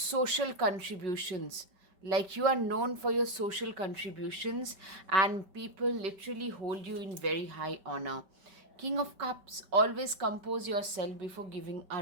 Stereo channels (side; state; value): left; late; 5.2 ms